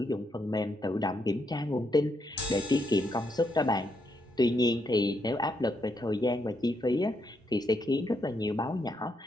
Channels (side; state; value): both; normal; correlation 0.78